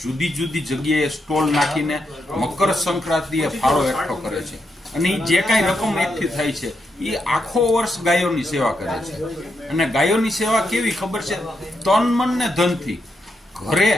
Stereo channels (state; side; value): normal; both; correlation 0.82